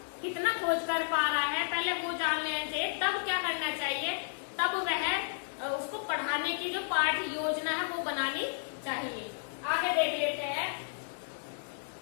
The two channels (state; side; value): silent; right; digital silence